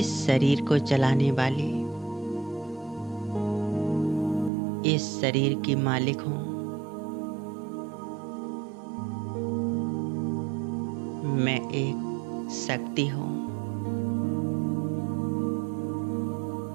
शरीर को चलाने वाली, इस शरीर की मालिक हूँ। मैं एक शक्ति हूँ।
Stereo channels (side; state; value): left; drops out; at 4.5 s